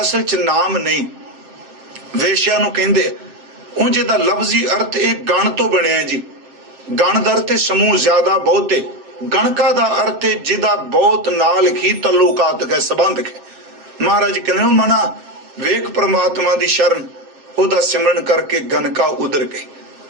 ਅਸਲ ਚ ਨਾਮ ਨਹੀਂ, ਵੇਸ਼ਿਆ ਨੂੰ ਕਹਿੰਦੇ। ਉਂਝ ਇਹਦਾ ਲਫ਼ਜ਼ੀ ਅਰਥ ਇਹ ਗਣ ਤੋਂ ਬਣਿਆ ਜੀ। ਗਣ ਦਾ ਅਰਥ ਸਮੂਹ, ਜ਼ਿਆਦਾ, ਬਹੁਤੇ। ਗਣਕਾ ਦਾ ਅਰਥ ਜਿਹਦਾ ਬਹੁਤ ਨਾਲ ਹੀ ਤਲੁਕਾਤ ਹੈ, ਸੰਬੰਧ ਹੈ। ਮਹਾਰਾਜ ਕਹਿੰਦੇ ਮਨਾ ਵੇਖ ਪ੍ਰਮਾਤਮਾ ਦੀ ਸ਼ਰਨ, ਉਹਦਾ ਸਿਮਰਨ ਕਰਕੇ ਗਨਕਾ ਉਧਰ ਗਈ।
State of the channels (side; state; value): left; late; 7.7 ms